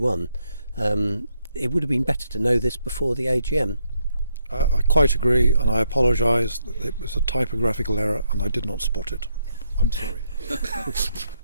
It would have been better to know this before the AGM. I quite agree, and I apologise. It was a typographical error, and I did not spot it. I'm sorry.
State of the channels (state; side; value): inverted; both; correlation -0.76